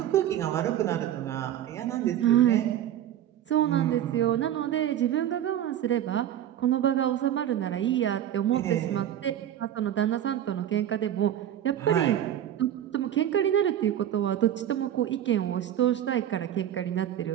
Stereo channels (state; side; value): quieter; left; 11.0 dB